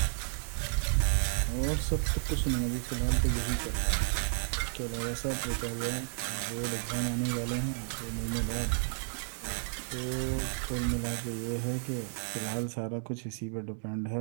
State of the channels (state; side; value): silent; left; digital silence